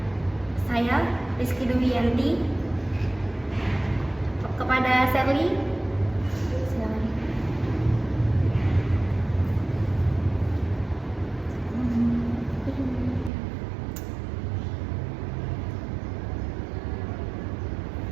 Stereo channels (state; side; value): drops out; left; at 13.3 s